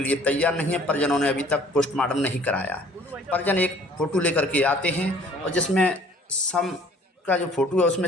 लिए तैयार नहीं है। परिजनों ने अभी तक पोस्टमार्टम नहीं कराया। परिजन एक फ़ोटो लेकर के आते हैं और जिसमें सब का जो फोटो है उसमें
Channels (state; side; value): normal; both; correlation 0.55